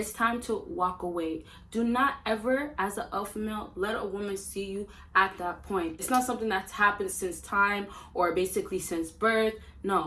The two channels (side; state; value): both; identical; correlation 1.00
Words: time to walk away. Do not ever, as an alpha male, let a woman see you at that point. It's not something that's happened since time or basically since birth.